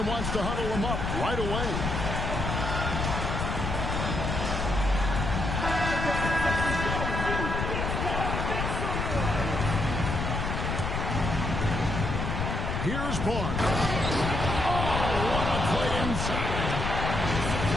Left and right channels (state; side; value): noise; left; rumble, 2 dB below the sound